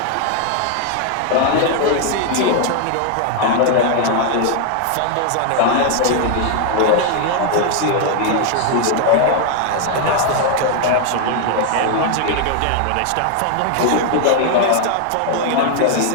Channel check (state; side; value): different; both; correlation 0.00